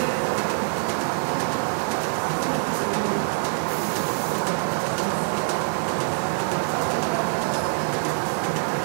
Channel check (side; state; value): left; silent; 55 dB below the other